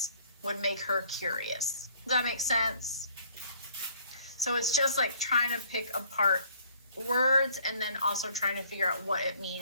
would make her curious. Does that make sense? So it's just like trying to pick apart words and then also trying to figure out what it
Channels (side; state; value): both; inverted; correlation -0.59